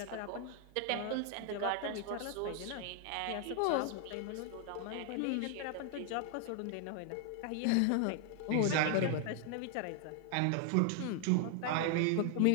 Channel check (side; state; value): both; different; correlation 0.00